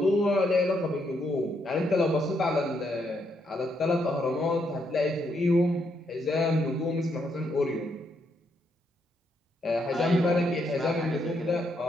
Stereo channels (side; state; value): both; normal; correlation 0.76